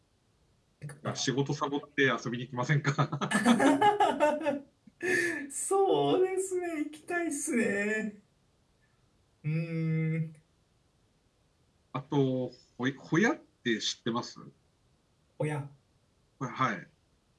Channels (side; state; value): both; identical; correlation 1.00